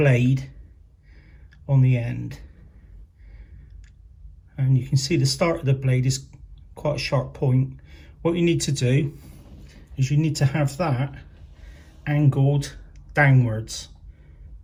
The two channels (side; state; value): both; identical; correlation 1.00